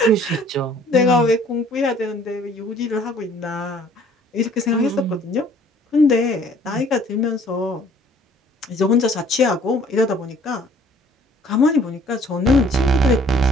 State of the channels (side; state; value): both; normal; correlation 0.56